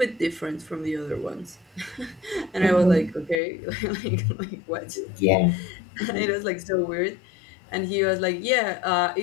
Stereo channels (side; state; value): right; drops out; at 3.4 s